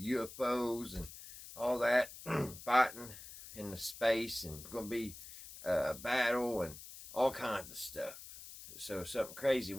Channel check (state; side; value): noise; left; hiss, 14 dB below the sound